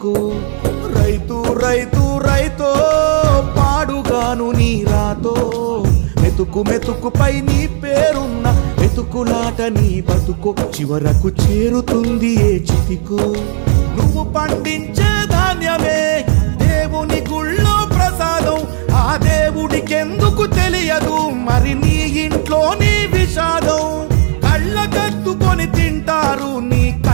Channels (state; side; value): silent; left; 61 dB below the other